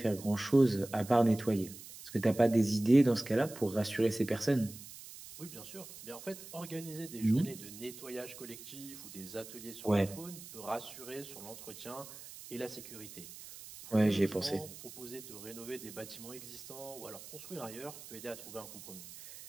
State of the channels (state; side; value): noise; right; hiss, 15 dB below the sound